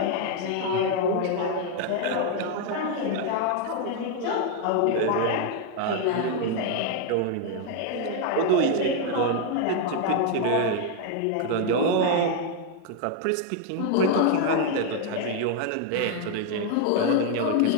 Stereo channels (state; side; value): different; both; correlation 0.01